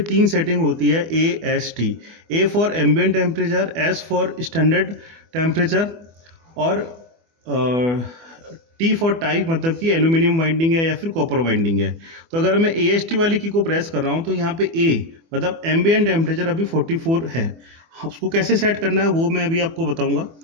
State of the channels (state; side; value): late; left; 24 ms